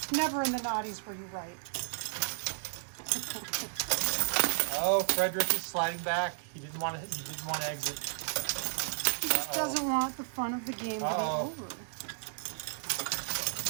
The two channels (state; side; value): silent; left; digital silence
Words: Never in the naughties were you right. Oh, Frederick is sliding back. He didn't want to exit. He just doesn't want the fun of the game to be over.